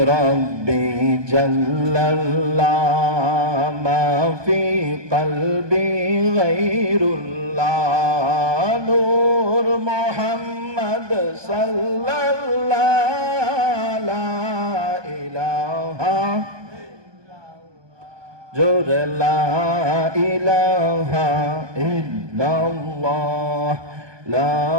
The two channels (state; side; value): late; left; 1.2 ms